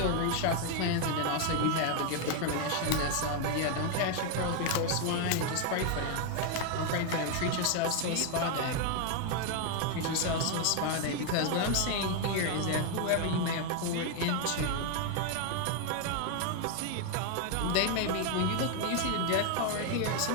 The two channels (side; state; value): both; different; correlation 0.01